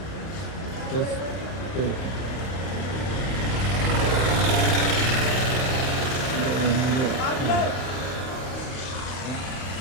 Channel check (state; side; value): late; right; 31 ms